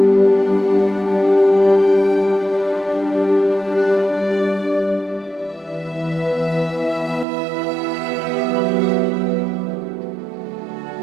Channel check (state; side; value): drops out; left; at 7.2 s